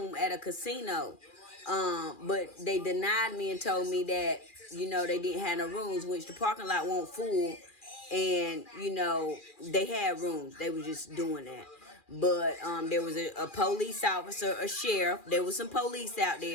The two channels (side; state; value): right; late; 2.4 ms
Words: at a casino. But they denied me and told me that, they didn't have no rooms, which the parking lot won't full. And, they had rooms. They were just doing that. But there was a police officer, a sheriff. There was some police out